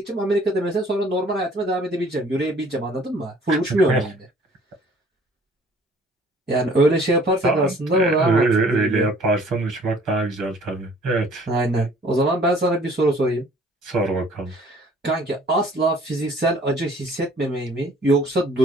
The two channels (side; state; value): both; normal; correlation 0.55